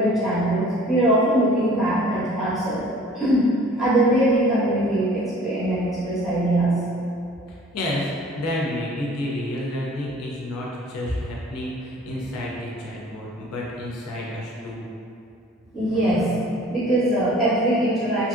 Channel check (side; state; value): both; normal; correlation 0.50